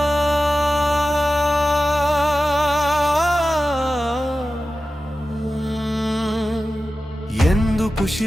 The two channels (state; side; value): normal; both; correlation 0.94